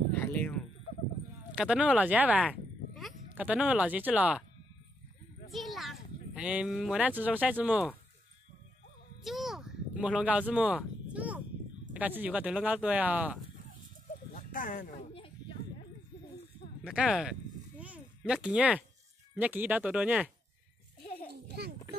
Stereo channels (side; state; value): both; normal; correlation 0.78